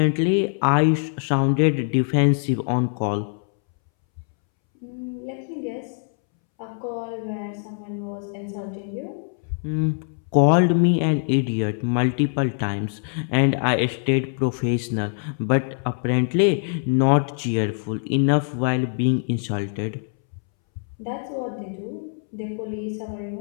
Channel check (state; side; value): silent; right; 63 dB below the other